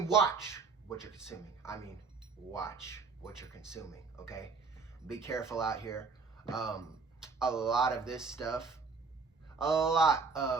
watch what you're consuming. I mean watch what you're consuming, okay? Be careful out here. A lot of this stuff,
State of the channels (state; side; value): quieter; left; 4.7 dB